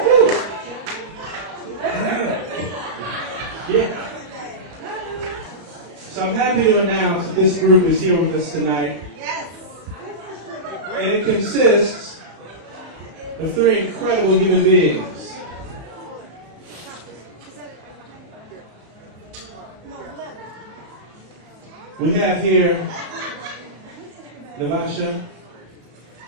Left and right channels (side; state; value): left; late; 34 ms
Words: This group is here with us tonight. Yes. And it consists of 3 incredible human beings. We have here Navasha.